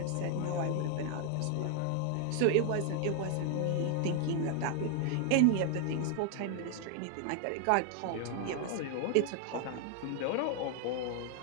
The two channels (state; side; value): different; both; correlation 0.00